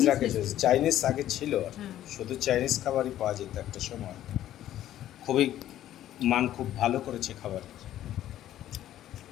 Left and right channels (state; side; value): quieter; right; 12.6 dB